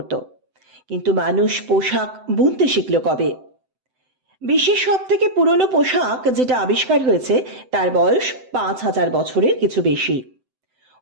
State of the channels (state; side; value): late; left; 7.8 ms